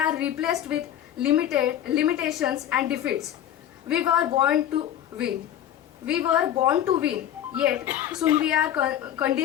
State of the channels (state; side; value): quieter; right; 11.0 dB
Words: replaced with limitations and defeats. We were born to win, yet soon we are